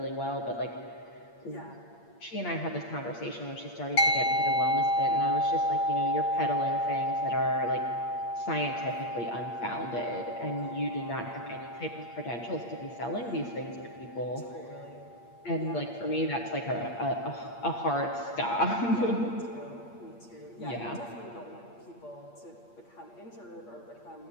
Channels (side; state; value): right; late; 8.6 ms